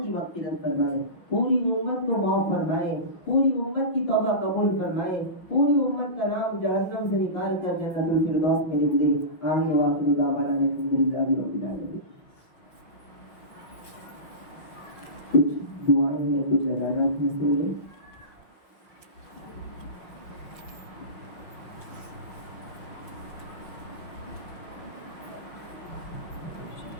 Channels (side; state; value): right; late; 5.9 ms